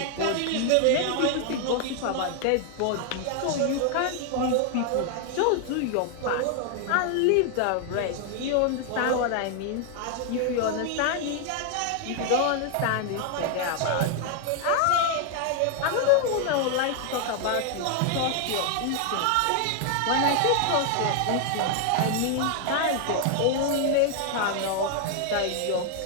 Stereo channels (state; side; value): different; both; correlation 0.00